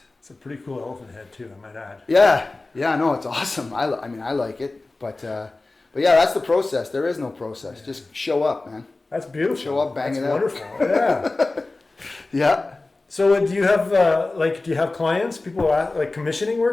It's a pretty cool elephant head too, I might add. Yeah, no, it's awesome. I like it, but yeah, that's the process. There is no process. Yeah. Just show up, man. That's beautiful. Show up, bang it out. That's wonderful. Yeah. Yeah. So do you have clients? People are like commissioning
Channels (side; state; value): right; quieter; 3.2 dB